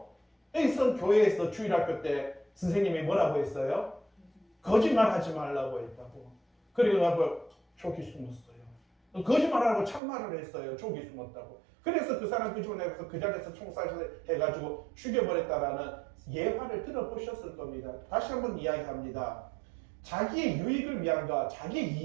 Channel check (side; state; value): left; drops out; at 10.0 s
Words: 여기서 교회에서 주일학교 때 선생님이 뭐라고 했어요? 거짓말하지 말라고 했다고. 그래가지고 족이 숨었어요. 거짓말하라고 참말을 했어요. 족이 숨었다고. 그래서 그 사람 끄집어내서 그 자리에서 총살을 해가지고 죽여버렸다라는 예화를 들어보셨을 겁니다. 다시 한번 이야기합니다. 자기의 유익을 위한가, 자기의